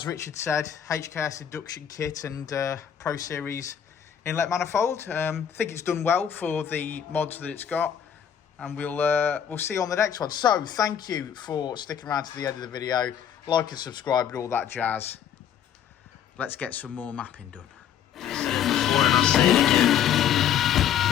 Richard said, HKS induction kit and Pro Series inlet manifold. I think it's done well for the mods that it's got. And we'll see you on the next one. So, thank you for sticking around to the end of the video. Like and subscribe and all that jazz. Let's get some more mapping done. Said it before and I'll say it again.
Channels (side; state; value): right; quieter; 9.1 dB